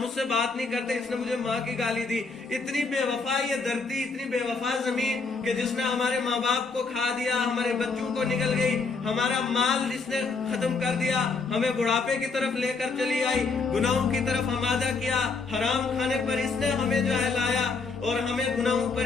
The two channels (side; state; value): right; quieter; 4.3 dB